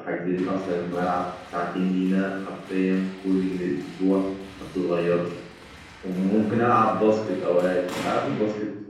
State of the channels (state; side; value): identical; both; correlation 1.00